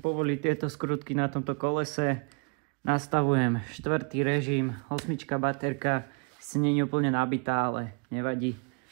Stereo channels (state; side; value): quieter; left; 37.9 dB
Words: povoliť tieto skrutky na tomto kolese. Nastavujem 4. režim, 8 baterka. Si nie je úplne nabitá, ale nevadí,